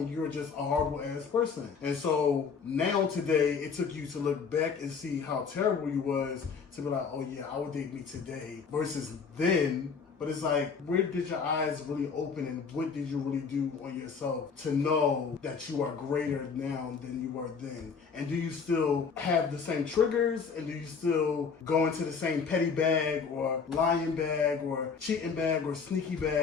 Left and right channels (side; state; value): right; quieter; 5.7 dB